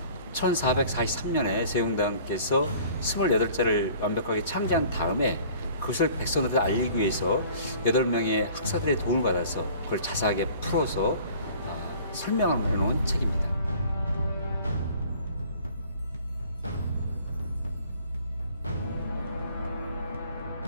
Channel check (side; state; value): both; inverted; correlation -0.50